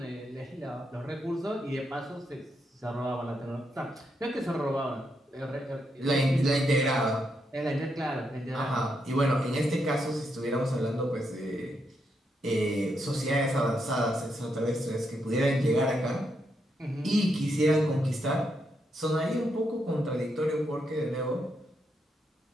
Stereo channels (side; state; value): both; normal; correlation 0.80